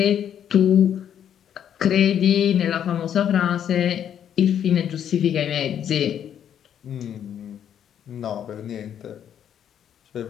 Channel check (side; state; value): right; quieter; 9.4 dB